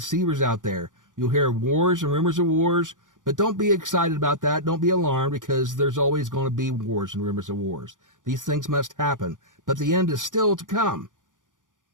out there. You'll hear wars and rumors of wars, but don't be excited about that. Don't be alarmed, because there's always going to be wars and rumors of wars. These things must happen, but the end is still to come.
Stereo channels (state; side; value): late; left; 0.88 ms